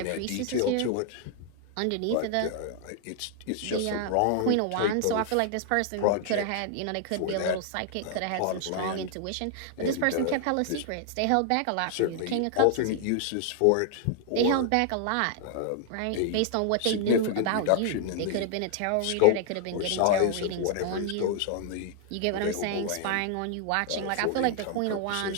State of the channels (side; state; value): both; different; correlation 0.00